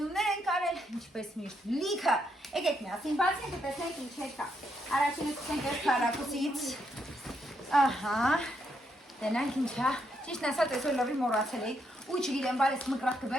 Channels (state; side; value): normal; both; correlation 0.78